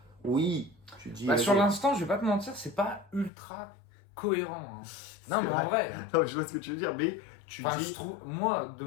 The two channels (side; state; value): right; drops out; at 3.3 s